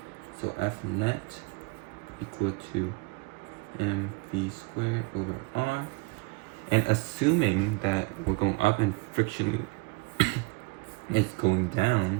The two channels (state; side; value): quieter; left; 26.7 dB